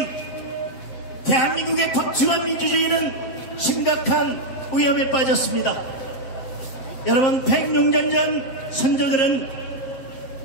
대한민국의 법치와 민주주의는 심각한 위험에 빠졌습니다. 여러분, 106년 전 선조들은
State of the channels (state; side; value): late; right; 7.6 ms